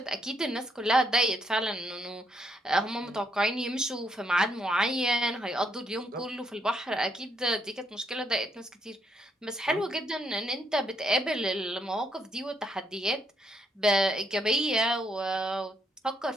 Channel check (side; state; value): both; normal; correlation 0.75